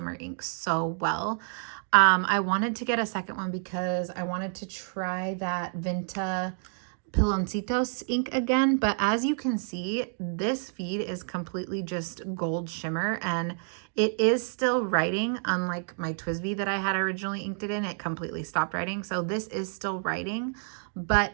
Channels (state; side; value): silent; left; 59 dB below the other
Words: ink so well. I wanted to get a second one because I wanted to try that Vinta Piloncitos ink again, but as you can see, this feed is completely just gold shimmer, and it is still writing, unlike my TWSBI that I had originally inked it in. It completely stopped writing, so this is still writing, but